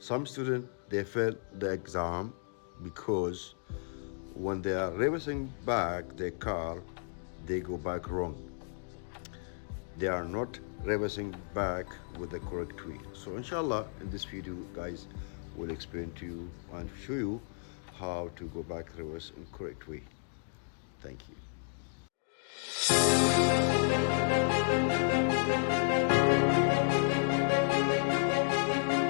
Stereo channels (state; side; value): silent; right; digital silence